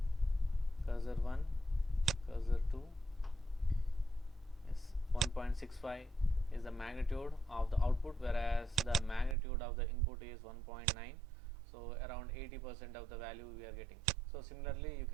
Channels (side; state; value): left; drops out; at 9.3 s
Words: cursor 1, cursor 2, yes, 1.65 is the magnitude of the output, whereas the magnitude of the input is 1.9. so around 80% of the value we are getting. So similarly you